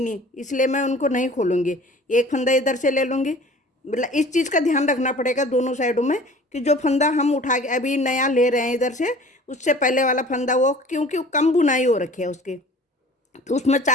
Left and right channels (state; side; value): normal; both; correlation 0.46